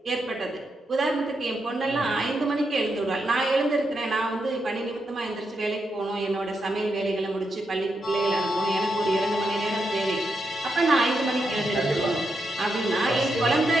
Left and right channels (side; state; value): both; normal; correlation 0.83